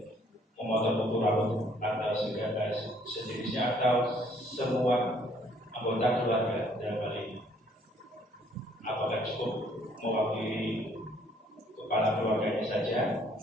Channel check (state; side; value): normal; both; correlation 0.63